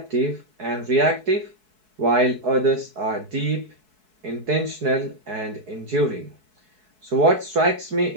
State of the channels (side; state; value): left; late; 4.6 ms